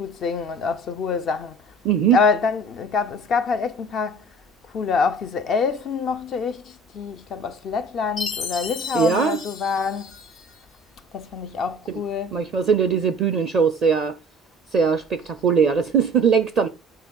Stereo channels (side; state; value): both; normal; correlation 0.46